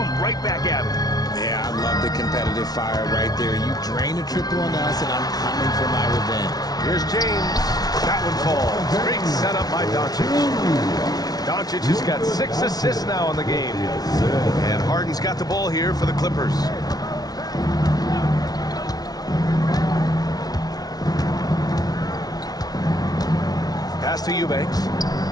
right back at him. Yeah, I love the competitive fire right there. You drain a triple on us, and I'm coming for my revenge. Here's James. That one falls. Great setup by Doncic. Doncic has got 6 assists now in the game. And Harden's got the ball here for the Clippers. Pass to Eubanks.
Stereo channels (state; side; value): late; right; 0.19 ms